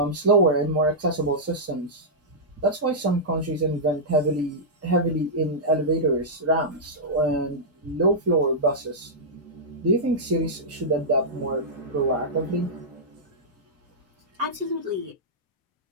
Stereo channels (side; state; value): both; normal; correlation -0.12